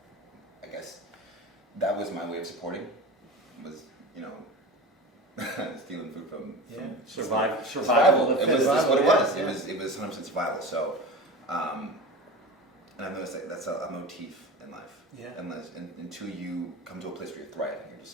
I guess that was my way of supporting. Was, you know, stealing food from Survival. It was that's what it was. Yeah. It was 100% survival. So, and I've noticed that that's a motif in life. Yeah. Until you come to a place where you're thriving, you're just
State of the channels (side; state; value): both; normal; correlation 0.30